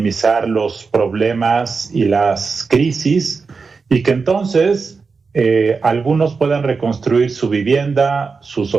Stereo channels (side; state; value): left; quieter; 4.8 dB